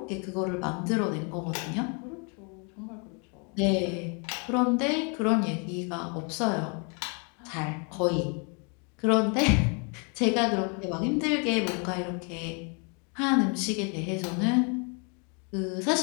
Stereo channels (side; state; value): right; quieter; 36.0 dB